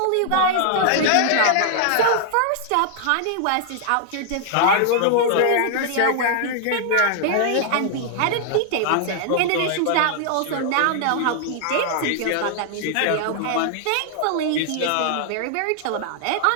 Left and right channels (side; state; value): both; different; correlation -0.01